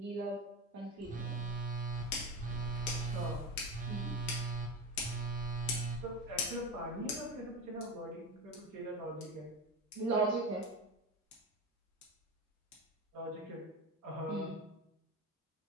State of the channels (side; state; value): both; normal; correlation 0.22